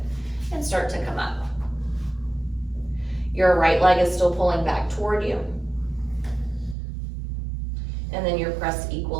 and start to come up. Your right leg is still pulling back toward you. And then you're pressed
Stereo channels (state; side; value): drops out; left; at 6.8 s